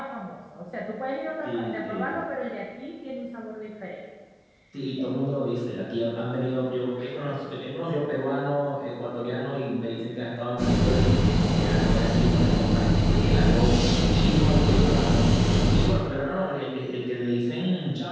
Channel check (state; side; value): identical; both; correlation 1.00